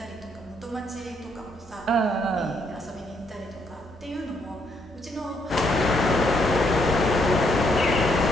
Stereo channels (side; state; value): both; normal; correlation 0.72